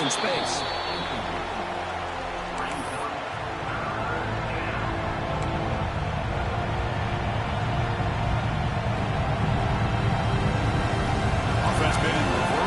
in space. Offense been in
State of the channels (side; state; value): both; identical; correlation 1.00